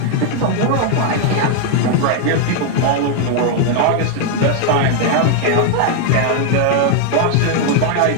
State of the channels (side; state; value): both; different; correlation 0.00